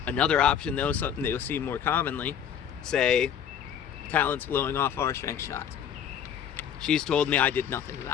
Another option though, something that you'll see more commonly, say Talon's blowing off our strength shots. She's told me I did nothing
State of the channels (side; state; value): right; quieter; 8.6 dB